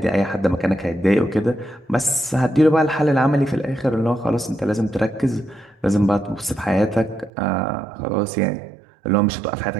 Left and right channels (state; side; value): drops out; left; at 7.3 s